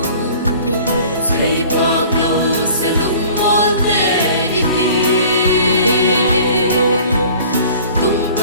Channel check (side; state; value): both; inverted; correlation -0.48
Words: thấy phạc lâu sẽ lung mol tê tung